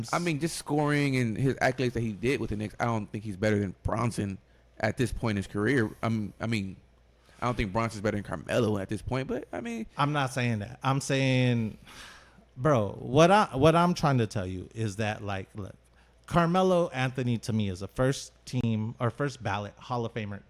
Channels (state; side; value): identical; both; correlation 1.00